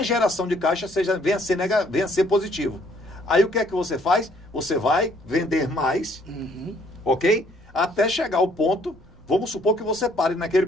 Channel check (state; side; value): noise; right; rumble, 28 dB below the sound